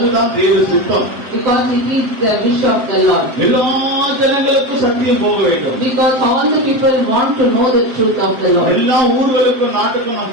தேவ சித்தம். Because it is the wish of the Lord. எல்லா ஜனங்களுக்கும் சத்தியம் போக வேண்டும். Because all the people want to know the truth of the Lord. எல்லா ஊர்களுக்கும் நாட்டுக்கும் நாம்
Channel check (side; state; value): left; late; 7.8 ms